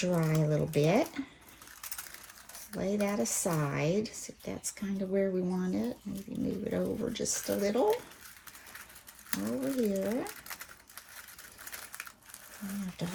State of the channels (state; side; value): identical; both; correlation 1.00